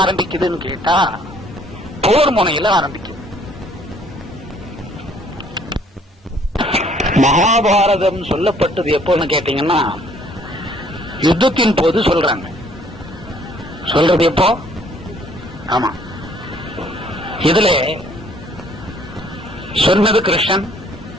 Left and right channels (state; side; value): normal; both; correlation 0.61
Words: ஆரம்பிக்குதுன்னு கேட்டா போர் முனையில ஆரம்பிக்குது. மகாபாரதம் சொல்லப்பட்டது எப்போன்னு கேட்டீங்கன்னா யுத்தத்தின் போது சொல்றாங்க. சொல்றது எப்போ? ஆமா, இதுல சொன்னது கிருஷ்ணன்,